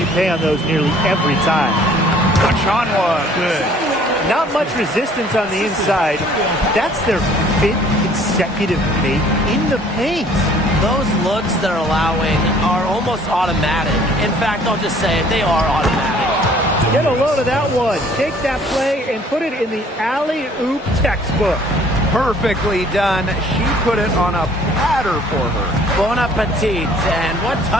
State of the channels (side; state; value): both; normal; correlation 0.56